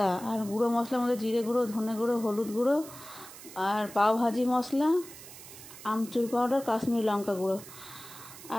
আর গুঁড়ো মশলার মধ্যে জিরে গুঁড়ো, ধনে গুঁড়ো, হলুদ গুঁড়ো, আর পাওভাজি মশলা, আমচুর পাউডার, কাশ্মীরি লঙ্কা গুঁড়ো,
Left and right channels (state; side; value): noise; right; hiss, 16 dB below the sound